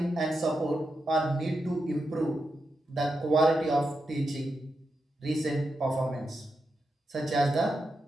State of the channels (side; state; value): both; normal; correlation 0.86